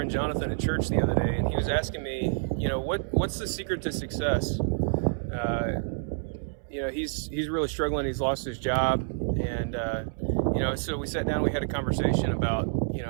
Jonathan at church the other day, and he was asking me, what's the secret to success? He's really struggling. He's lost his job, and so we sat down. We had a conversation about,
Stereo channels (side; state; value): left; silent; 59 dB below the other